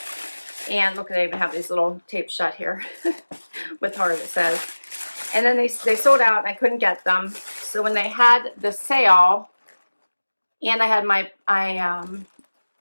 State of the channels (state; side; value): inverted; both; correlation -1.00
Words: And look, they even have these little tape shut here with heart, it says. And then they sold out, and I couldn't get them. So when they had the sale, and I had my,